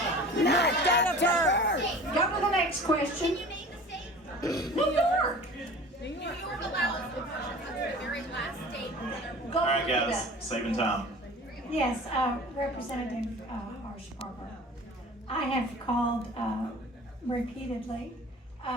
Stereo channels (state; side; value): normal; both; correlation 0.41